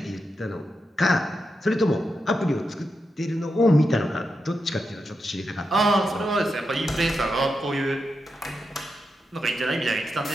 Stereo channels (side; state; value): both; normal; correlation 0.87